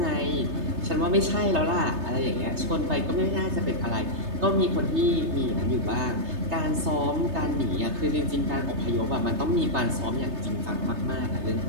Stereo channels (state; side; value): late; left; 3.3 ms